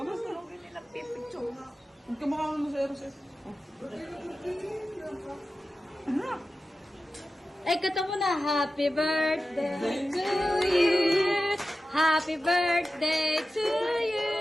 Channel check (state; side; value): normal; both; correlation 0.94